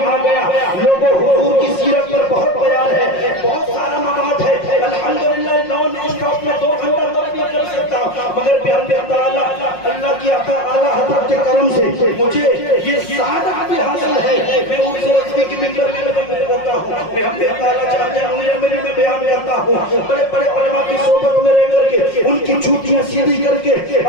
آ گیا. لوگوں حضور کی سیرت پر بہت ٹی وی کی ممبر میں کرتا ہوں، میں ہم نے تعالیٰ چاہتے ہیں میں بیان کرتا ہوں، بڑے بڑے علماء کی صحبت میں رہ کر کے ان کی جھوٹیاں سیدھی کر کے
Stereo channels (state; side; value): late; right; 5.5 ms